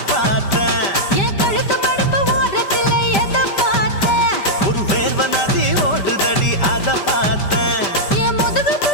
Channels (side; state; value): right; late; 5.1 ms